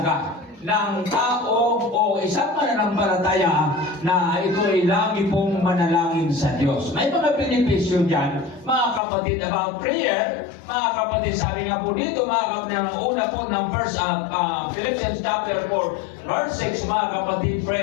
ng tao o isang mananampalataya na ito ay lagi pong manalangin sa Diyos. May mga benepisyo dyan, mga kapatid, about prayer. Mga kapatid, sabi nga po dito, mga kapatid, ang una po ng Philippians chapter 4, verse 6, mga kapatid,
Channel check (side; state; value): right; drops out; at 9.0 s